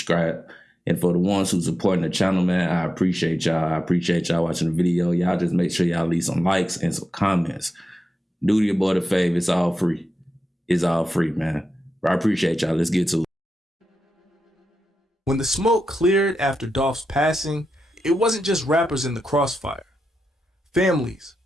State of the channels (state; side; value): normal; both; correlation 0.89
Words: And for the ones who supporting the channel, man, I appreciate y'all. I appreciate y'all watching the video. Y'all just make sure y'all leave some likes and some comments. Do your boy the favor. It's all free. It's all free, man. But I appreciate y'all. Let's get to it. When the smoke cleared after Dolph's passing, it wasn't just rappers in the crossfire. Families,